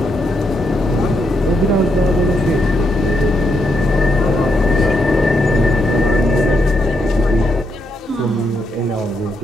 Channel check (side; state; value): both; normal; correlation 0.80